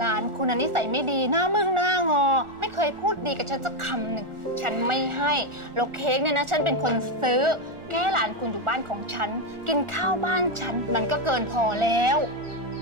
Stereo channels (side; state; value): left; late; 1.4 ms